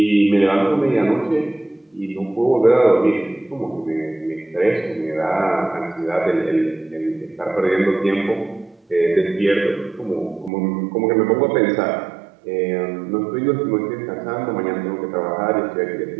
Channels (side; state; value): left; drops out; at 10.5 s